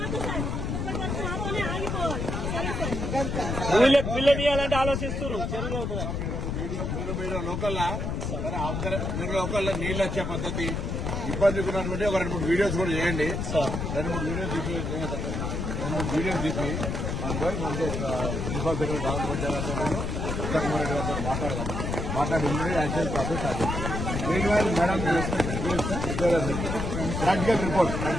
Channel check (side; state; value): left; noise; rumble, 2 dB below the sound